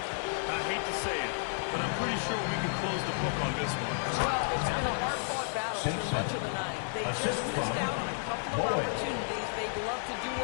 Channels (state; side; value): silent; right; digital silence